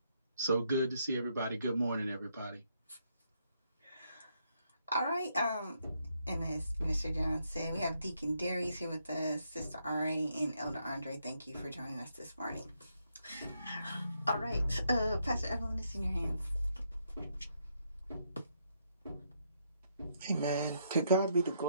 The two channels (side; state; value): both; inverted; correlation -0.75